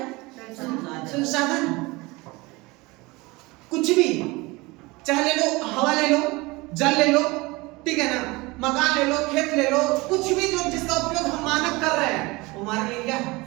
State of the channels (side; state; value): left; quieter; 23.4 dB